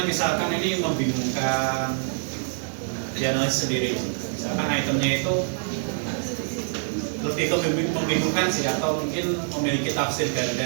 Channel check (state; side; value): silent; left; 62 dB below the other